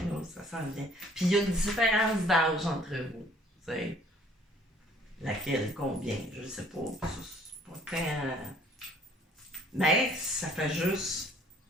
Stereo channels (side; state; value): both; normal; correlation 0.57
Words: là, ça s'en vient. Puis il y a une différence d'âge entre vous. T'sais. Laquelle, combien, je sais pas. C'est pas tant. Mais ça fait juste